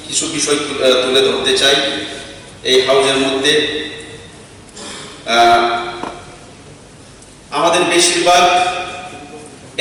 কিছু বিষয় তুলে ধরতে চাই এই হাউজের মধ্যে। আমাদের বেশিরভাগ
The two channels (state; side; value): identical; both; correlation 1.00